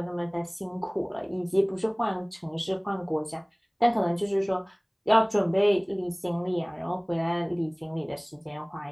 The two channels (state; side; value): identical; both; correlation 1.00